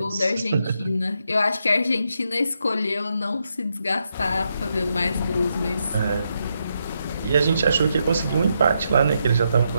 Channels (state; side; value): inverted; both; correlation -0.81